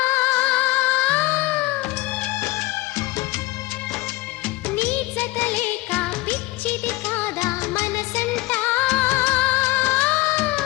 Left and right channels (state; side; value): quieter; right; 20.3 dB